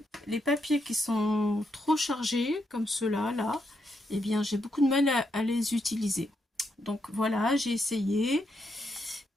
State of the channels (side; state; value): both; normal; correlation 0.80